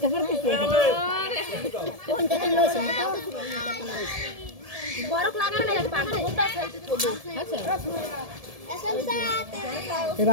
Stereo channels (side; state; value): left; late; 1.7 ms